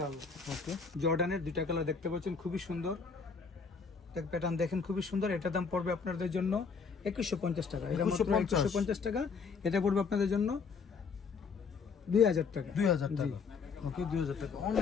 ওকে, জর্ডানের দুইটা কালার দেখতে পাচ্ছেন, খুবই সুন্দর, প্যাটার্ন দেখেন, খুবই সুন্দর। এটার দাম পড়বে আপনাদের জন্য 2150 টাকা। এটা মাত্র 2150 টাকা। এটা পড়বে আপনাদের জন্য 2000 টাকা। 2000 টাকা। ওকে, 2000 টাকা।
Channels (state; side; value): quieter; right; 5.3 dB